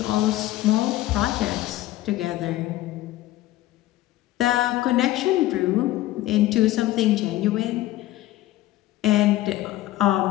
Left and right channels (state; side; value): quieter; right; 15.7 dB